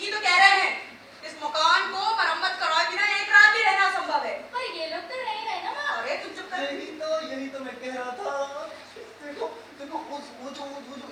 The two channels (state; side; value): identical; both; correlation 1.00